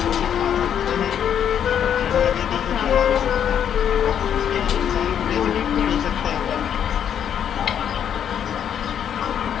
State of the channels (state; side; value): quieter; right; 8.9 dB